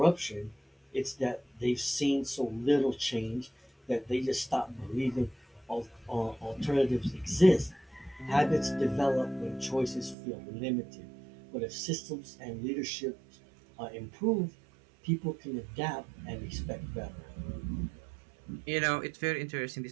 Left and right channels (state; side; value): drops out; left; at 10.2 s